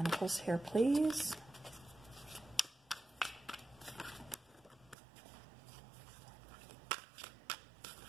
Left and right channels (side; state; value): left; drops out; at 5.0 s